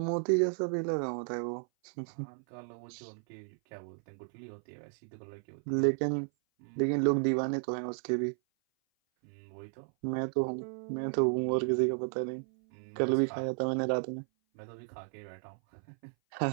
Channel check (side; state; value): left; silent; 55 dB below the other